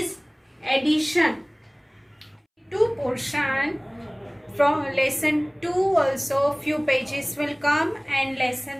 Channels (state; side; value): identical; both; correlation 1.00